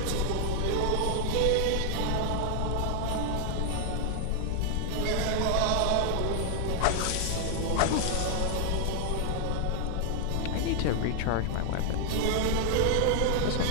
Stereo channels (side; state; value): both; different; correlation 0.00